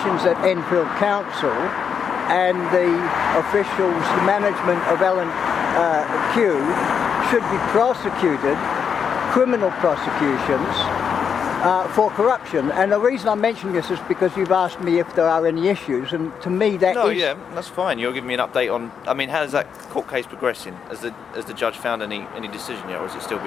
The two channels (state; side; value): quieter; right; 7.0 dB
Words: at Enfield Council and the officials, the management of L&Q, should be prosecuted, criminal prosecutions, for corruption. And the reason I'm mentioning this is because you've asked me if there are any issues, and to me that No, is... yeah, that's fine. You're giving me an update on. I mean, how's that court case progressing? Has the judge found any decision yet, or is it still